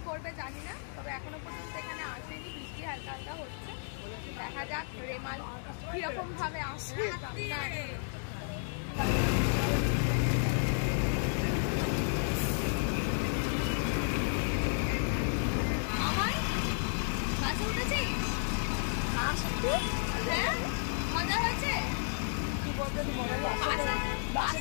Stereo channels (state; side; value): silent; right; digital silence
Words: করবে জানি না, তবে এখনো পর্যন্ত এখানে আসেনি। বৃষ্টি হালকা হালকা হচ্ছে, দেখা যাক রেমাল কিরকম ভাবে আসে। বাসে উঠেছিস? হ্যাঁ মজা হয়েছে।